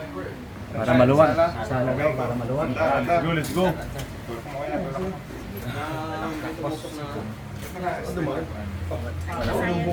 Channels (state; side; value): identical; both; correlation 1.00